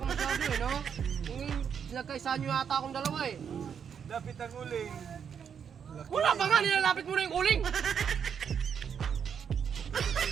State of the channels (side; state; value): left; quieter; 7.4 dB